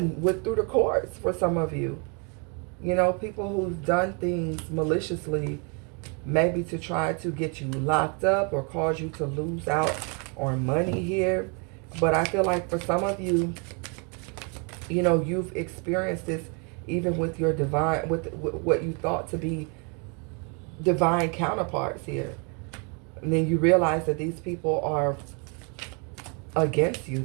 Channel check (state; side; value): quieter; left; 35.2 dB